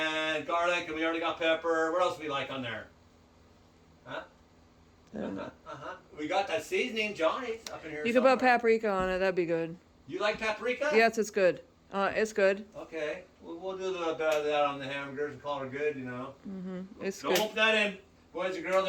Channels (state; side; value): identical; both; correlation 1.00